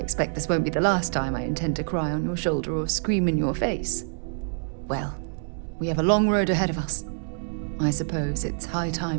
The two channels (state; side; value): silent; left; digital silence